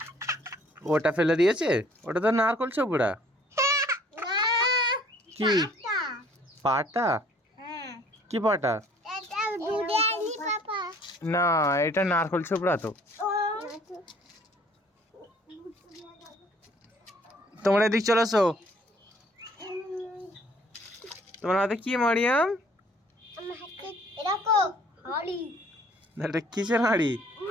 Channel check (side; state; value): both; normal; correlation 0.57